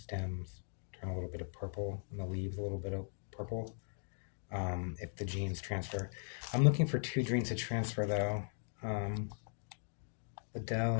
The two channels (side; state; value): right; silent; digital silence